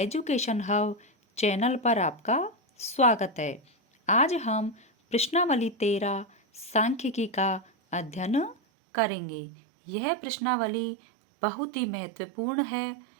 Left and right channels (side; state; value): left; drops out; at 8.6 s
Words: हब चैनल पर आपका स्वागत है। आज हम प्रश्नावली 13 सांख्यिकी का अध्ययन करेंगे। यह प्रश्नावली बहुत ही महत्वपूर्ण है।